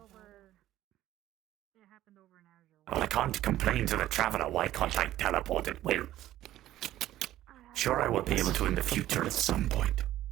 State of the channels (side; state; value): left; quieter; 14.0 dB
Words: Well, I can't complain to the traveler. Why can't I teleport at will? Sure, I will be able to in the future at some point.